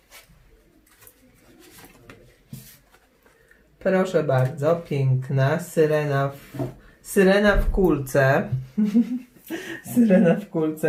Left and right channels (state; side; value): identical; both; correlation 1.00